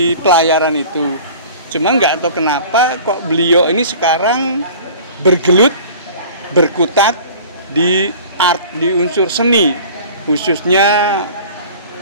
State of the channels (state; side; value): inverted; both; correlation -0.43